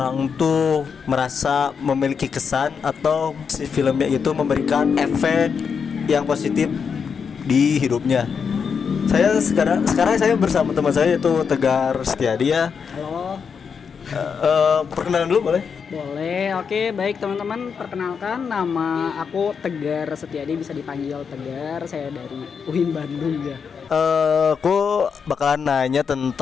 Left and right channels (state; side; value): quieter; right; 6.3 dB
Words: tuh merasa memiliki kesan atau si filmnya itu memberikan efek yang positif di hidupnya. Sekarang saya bersama teman saya yaitu Tegar Setiadi ya. Halo, Perkenalan dulu boleh? boleh. Oke, baik teman-teman. Perkenalkan, nama aku Tegar Setiadi, bisa dipanggil Tegar. Saya dari UIN Bandung ya. Aku bakalan nanya